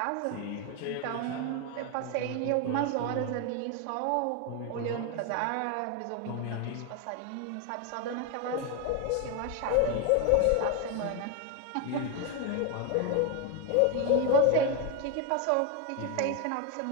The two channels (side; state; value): both; different; correlation 0.01